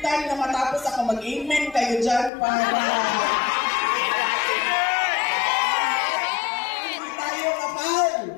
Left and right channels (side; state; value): right; drops out; at 2.3 s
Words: time na matapos ako mag-amen kayo dyan para hindi tayo kapal.